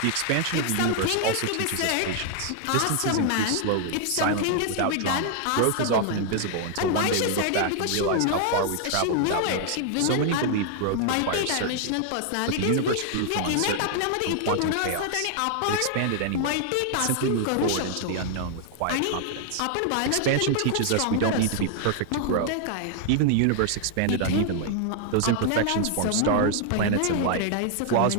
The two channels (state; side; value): different; both; correlation 0.00